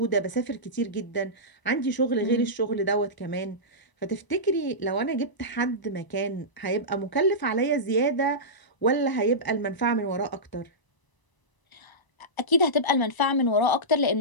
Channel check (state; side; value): late; right; 1.0 ms